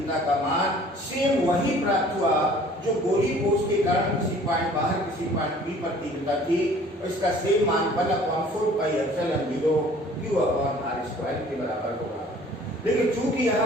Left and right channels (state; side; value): normal; both; correlation 0.52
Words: का मान सेम वही प्राप्त हुआ जो गोलीय कोष के कारण किसी पॉइंट बाहर किसी पॉइंट P पर तीव्रता थी और इसका सेम मान 1/4πε0 Q/r² के बराबर होगा। लेकिन चूंकि